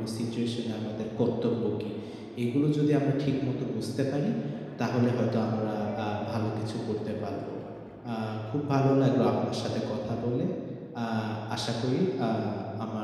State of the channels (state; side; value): identical; both; correlation 1.00